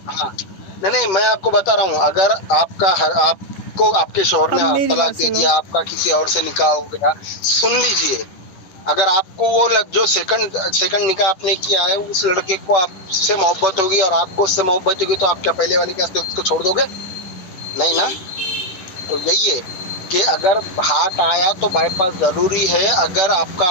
हाँ नहीं, मैं आपको बता रहा हूँ, अगर आपको आपके शौहर ने तलाक दे दिया, आपका किसी और से निकाह हो गया, सुन लीजिए, अगर आपको वो जो सेकंड निकाह आपने किया है, उस लड़के को आपसे मोहब्बत होगी और आपको उससे मोहब्बत होगी, तो आप क्या पहले वाले के वास्ते उसको छोड़ दोगे? नहीं ना। तो यही है कि अगर हार्ट आया तो बाईपास जरूरी है। अगर आपका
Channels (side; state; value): right; late; 10 ms